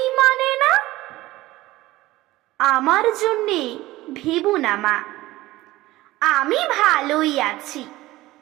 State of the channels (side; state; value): left; quieter; 17.7 dB